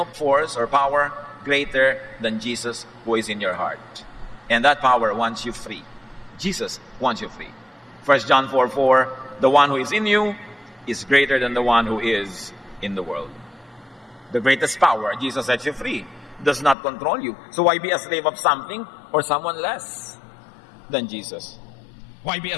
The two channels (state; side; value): drops out; right; at 16.8 s